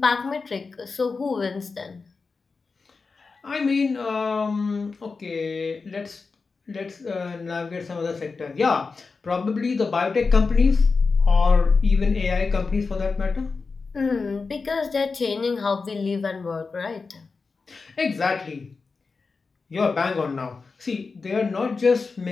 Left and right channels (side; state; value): right; quieter; 4.5 dB